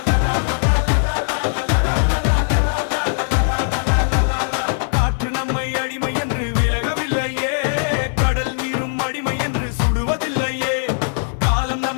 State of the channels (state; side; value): silent; right; 66 dB below the other